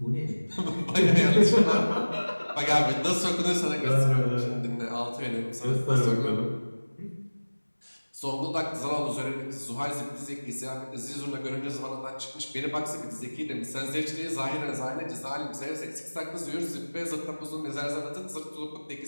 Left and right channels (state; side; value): inverted; both; correlation -1.00